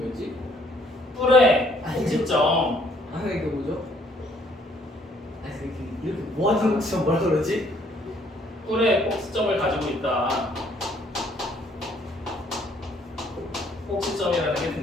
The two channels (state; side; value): normal; both; correlation 0.64